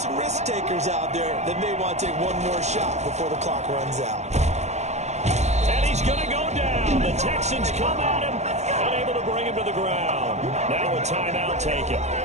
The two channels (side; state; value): left; late; 0.33 ms